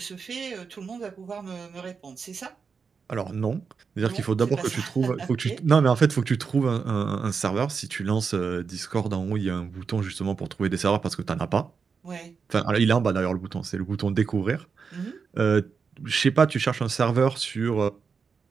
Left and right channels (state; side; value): quieter; left; 5.6 dB